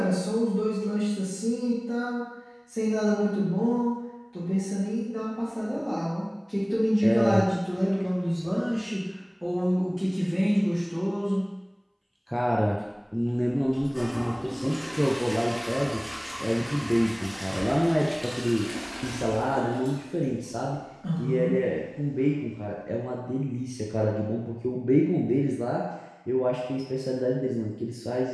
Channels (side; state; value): both; identical; correlation 1.00